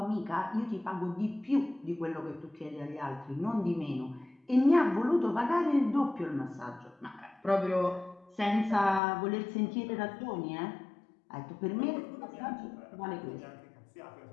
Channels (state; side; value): drops out; right; at 9.0 s